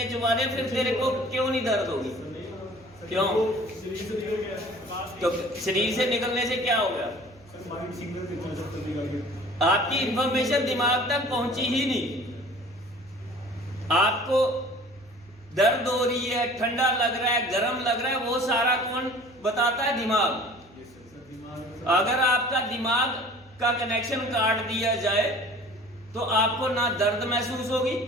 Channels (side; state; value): right; noise; hum, 27 dB below the sound